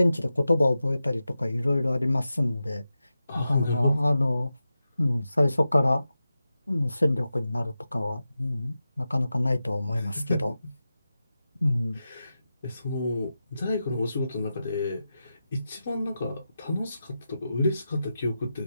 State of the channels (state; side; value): inverted; both; correlation -0.91